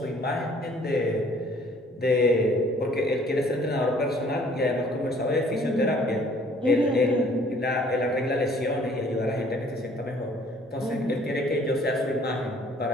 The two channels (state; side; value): normal; both; correlation 0.58